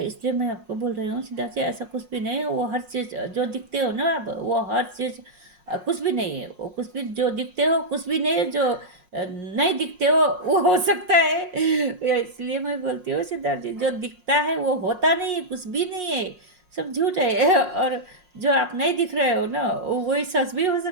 मैं आपको बोल रही हूँ सिद्धार्थ जी, ऐसा कुछ भी नहीं है। वो हर चीज़ जो दिखते हो ना आप, वो हर चीज़ कुछ भी नहीं है, वो कुछ भी जो दिखते हो कुछ भी नहीं है, जो नहीं दिखते हो सकता है। इसलिए मैं बोलती हूँ सिद्धार्थ जी, जो दिखता है वो होता नहीं है, कुछ भी नहीं है, सब झूठ है। और जो आप नहीं दिख रहे हो ना, वही सच भी हो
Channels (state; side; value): late; left; 5.5 ms